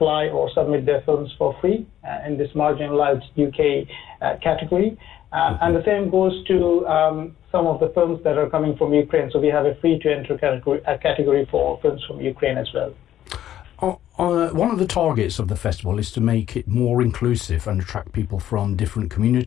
or submit their films for free in this marginalized UK category. And the same goes to some of the films that are coming from Ukraine. So we have a free-to-enter category for films from Ukraine as well. One of the targets of the festival is to make it more inclusive and attract people from different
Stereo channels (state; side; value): quieter; right; 11.8 dB